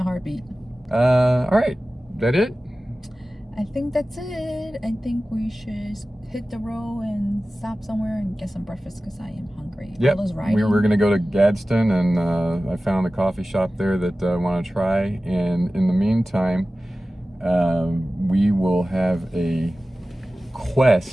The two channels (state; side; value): normal; both; correlation 0.96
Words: heartbeat. All right. That it? I think that's it. I think we should hit the road and stop somewhere and get some breakfast because I am hungry. Yep. We were going to go to Gadsden, and I found a coffee shop there that I want to try. And in the meantime, we will have a